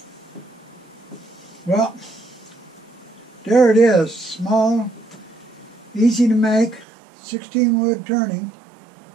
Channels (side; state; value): left; drops out; at 6.9 s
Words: Well, there it is, small, easy to make, 16 wood turning,